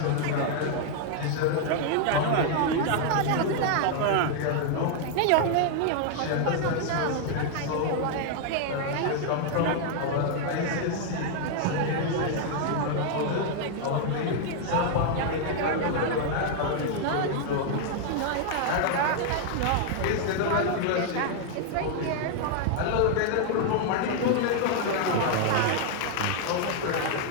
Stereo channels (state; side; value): different; both; correlation 0.00